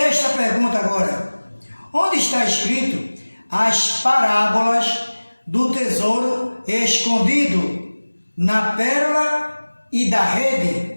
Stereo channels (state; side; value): inverted; both; correlation -1.00